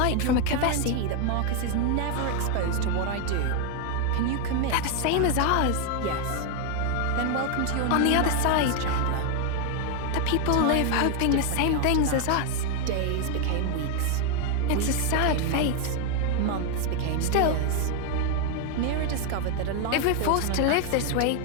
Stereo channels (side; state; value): both; different; correlation 0.01